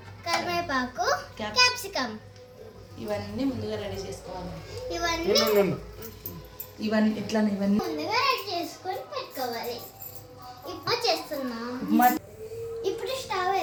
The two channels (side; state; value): both; identical; correlation 1.00